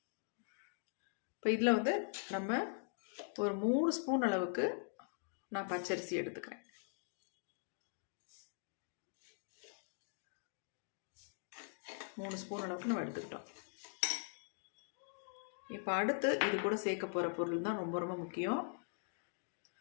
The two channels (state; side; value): silent; right; digital silence